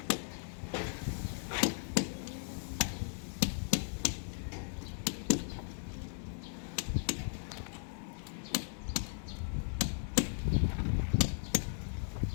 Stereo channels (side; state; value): right; silent; digital silence